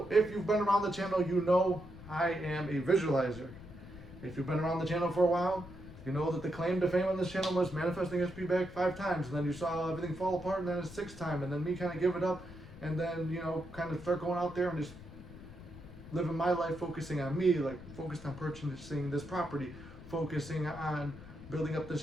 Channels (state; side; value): noise; left; rumble, 16 dB below the sound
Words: if you've been around the channel, you know I am a visualizer. If you've been around the channel for a while, you know that the claim to fame on this channel was manifesting SP back 5 times, and then you saw everything fall apart, and then a 6th time, and then me kind of give it up, and then, you know, kind of start going out there and just living my life, focusing on me, like focused on purchasing this property, focusing on building up this